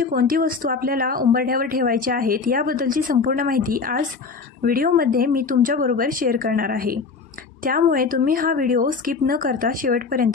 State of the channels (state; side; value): quieter; right; 4.8 dB